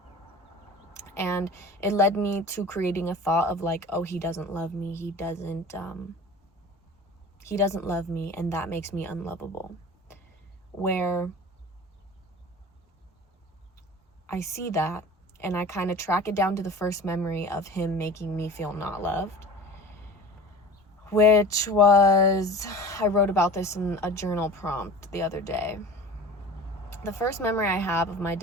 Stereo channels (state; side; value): normal; both; correlation 0.38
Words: And it led me to creating a thought of like, oh, he doesn't love me. He doesn't love me, and that makes me unlovable. Where I see that, and I kind of track it down to the first memory of him making me feel not loved, which was, I wrote about this in a journal prompt the other day. The first memory I have of my